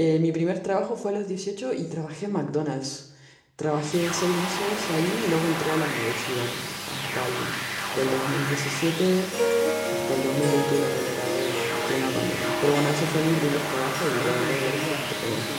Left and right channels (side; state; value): both; identical; correlation 1.00